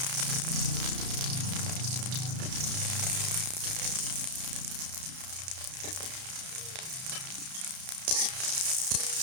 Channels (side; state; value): left; late; 32 ms